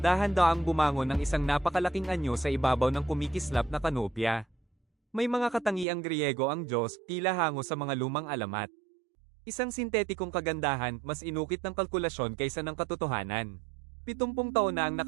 bumangon ng isang napakalaking anyo sa ibabaw ng kumikislap na kanopya. May mga katangiang Griego ang Diyos, tila hango sa mga lumang alamat. Isang sintetikong kagandahan, mas inukit ng kalkulasyon kaysa ng katotohanan. 70 taon na ang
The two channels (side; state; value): left; drops out; at 5.9 s